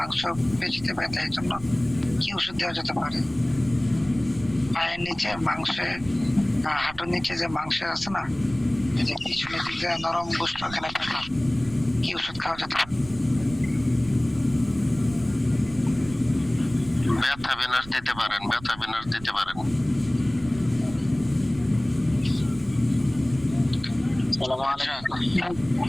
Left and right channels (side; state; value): right; noise; rumble, 17 dB below the sound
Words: এই জন্য কি ওষুধ দেওয়া যেতে পারে? পায়ের নিচে হাঁটুর নিচে যে মাংস আছে না, যে পিছনের দিকে নরম গোস্ত, ওখানে ব্যথা, কি ওষুধ খাওয়া যেতে পারে? ব্যথা বিনাশ দিতে পারেন।